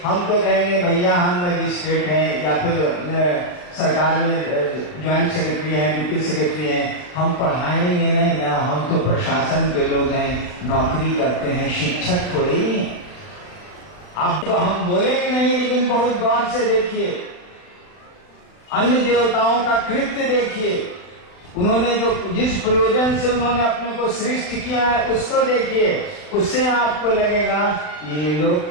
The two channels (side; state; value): right; late; 40 ms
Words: हम तो कहेंगे भैया हम मजिस्ट्रेट हैं या फिर सरकार में ज्वाइंट सेक्रेटरी हैं, डिप्टी सेक्रेटरी हैं, हम पढ़ाएंगे नहीं ना, हम तो प्रशासन के लोग हैं, नौकरी करते हैं, शिक्षक थोड़ी। अब तो हम बोलेंगे नहीं, लेकिन बहुत गौर से देखिए, अन्य देवताओं का कृत्य देखिए, उन्होंने जो जिस प्रयोजन से उन्होंने अपने को सृष्टि किया है उसको देखिए। उससे आपको लगेगा ये लोग